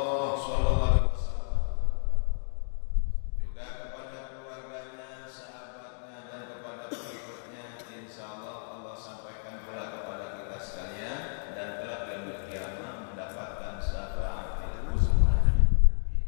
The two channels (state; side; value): silent; right; digital silence